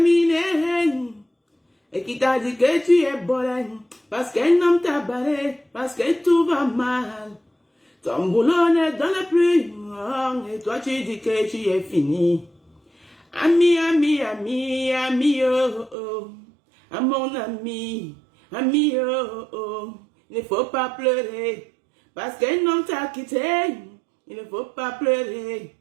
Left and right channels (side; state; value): left; drops out; at 16.0 s